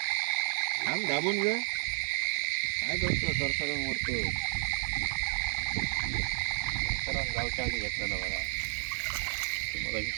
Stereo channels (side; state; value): left; silent; 57 dB below the other